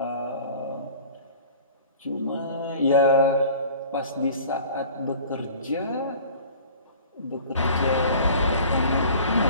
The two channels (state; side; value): inverted; both; correlation -0.44